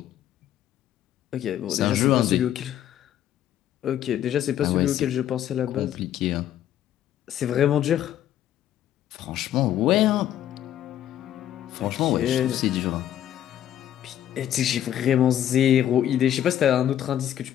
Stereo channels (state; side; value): quieter; right; 11.3 dB